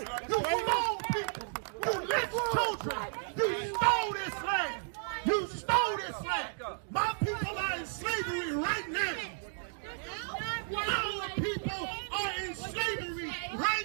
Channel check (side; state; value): left; silent; digital silence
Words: You clone people. You lynched children. You stole this land. You stole this land. My people are in slavery right now. Our people are in slavery